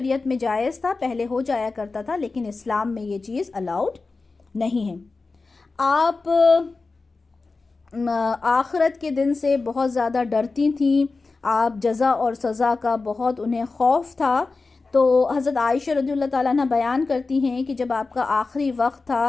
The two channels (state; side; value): quieter; right; 3.9 dB